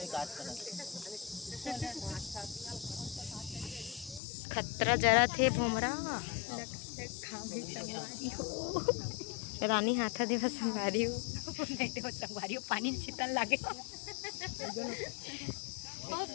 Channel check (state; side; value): drops out; right; at 4.2 s